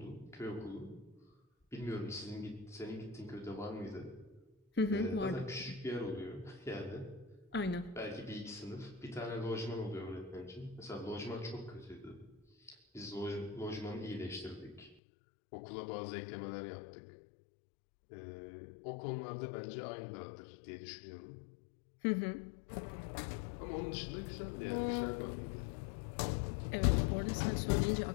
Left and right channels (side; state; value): right; drops out; at 15.0 s